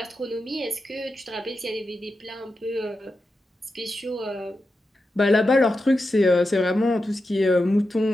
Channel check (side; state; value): both; normal; correlation 0.89